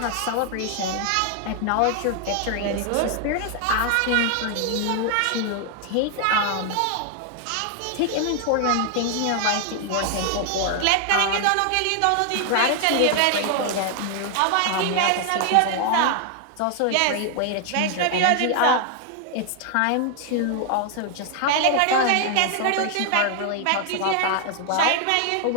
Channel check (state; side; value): different; both; correlation 0.00